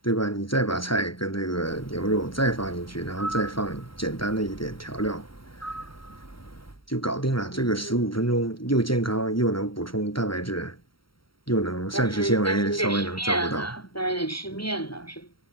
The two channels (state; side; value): late; right; 0.74 ms